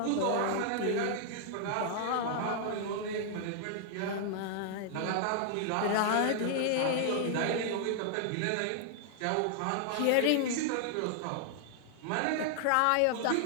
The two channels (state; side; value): different; both; correlation 0.00